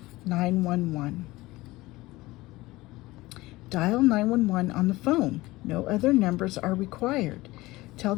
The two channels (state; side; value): quieter; right; 19.6 dB